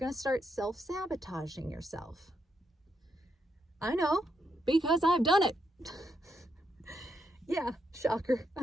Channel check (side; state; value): both; normal; correlation 0.79